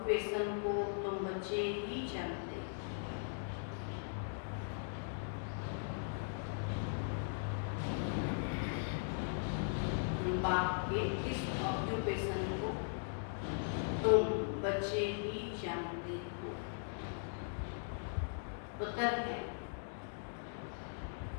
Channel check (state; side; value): silent; right; digital silence